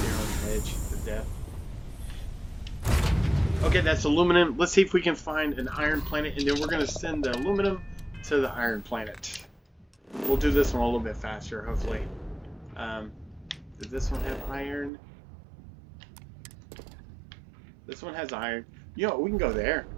there on the edge of death. Okay, that's aluminum. Let's see if we can find an iron planet, and then we're going to send the aluminum to the iron planet. We'll do this one a little bit faster, hopefully. Does this one have iron? This one has iron. You know, we can go there.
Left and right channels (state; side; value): drops out; left; at 14.9 s